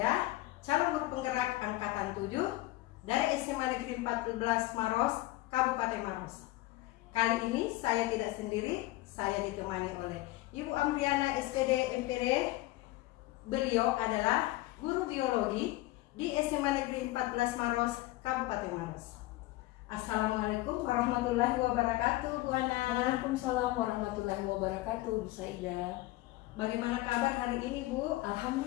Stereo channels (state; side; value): quieter; right; 18.4 dB